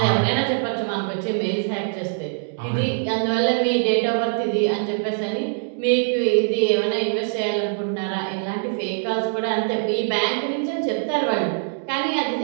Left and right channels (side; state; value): left; silent; digital silence